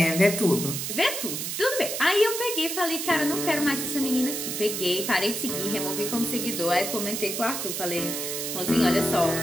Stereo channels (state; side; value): noise; right; hiss, 3 dB below the sound